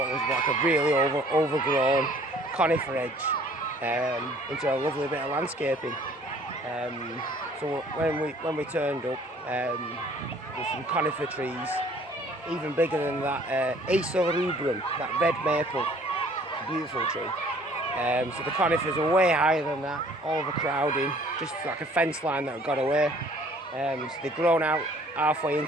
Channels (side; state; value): both; normal; correlation 0.56